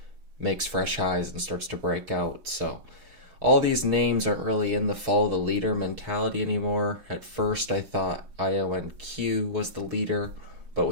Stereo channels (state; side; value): late; left; 6.3 ms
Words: makes fresh highs and starts to break out. So all these names aren't really in the follow the leader mentality anymore. At first I thought IONQ was the leader, but